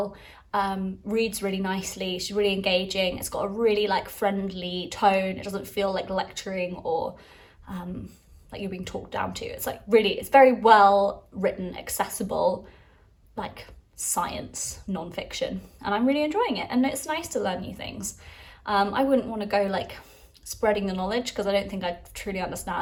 reads really nicely, she's really engaging. It's got a really like friendly tone. It doesn't feel like lecturing or like you're being talked down to. It's like it's very well written, accessible, like science non-fiction, and I'm really enjoying it, and it's nice to learn new things. I wouldn't want to go like spreading the knowledge because I don't think I truly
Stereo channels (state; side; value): identical; both; correlation 1.00